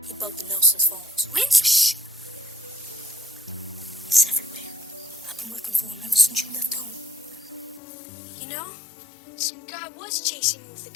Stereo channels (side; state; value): right; drops out; at 7.8 s